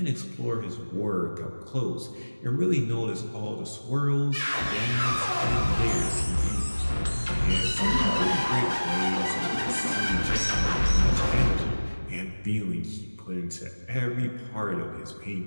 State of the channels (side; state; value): both; inverted; correlation -1.00